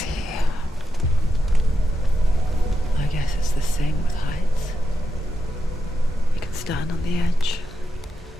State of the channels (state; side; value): normal; both; correlation 0.85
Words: here. I guess it's the same with heights. stand on the edge.